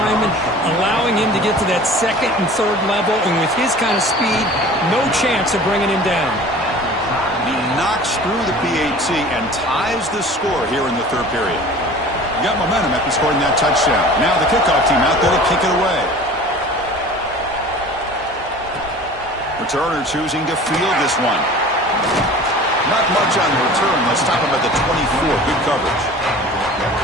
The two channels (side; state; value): both; normal; correlation 0.43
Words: allowing him to get to that 2nd and 3rd level. And with his kind of speed, no chance of bringing him down. He knocks through the PAT and ties the score here in the 3rd period. He got momentum after scoring that touchdown. Now the kickoff team out there to kick it away. Returner choosing to field this one. Not much on the return. They'll stop him at the 24. Good coverage.